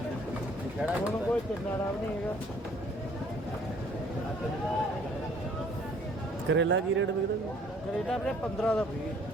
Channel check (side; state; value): both; normal; correlation 0.59